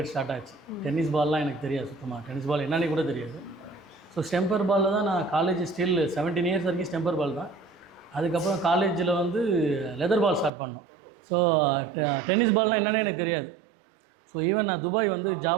ஸ்டார்ட் ஆச்சு. டென்னிஸ் பால்லாம் எனக்கு தெரியாது சுத்தமாக. டென்னிஸ் பால் என்னன்னு கூட தெரியாது. ஸோ ஸ்டெம்பர் பாலில் தான் நான் காலேஜ் ஸ்டில் 17 இயர்ஸ் வரைக்கும் ஸ்டெம்பர் பால் தான். அதுக்கப்புறம் காலேஜில் வந்து லெதர் பால் ஸ்டார்ட் பண்ணோம். ஸோ டென்னிஸ் பால்னால் என்னென்னு எனக்கு தெரியாது. ஸோ ஈவன் நான் துபாய் வந்து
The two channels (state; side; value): drops out; left; at 10.5 s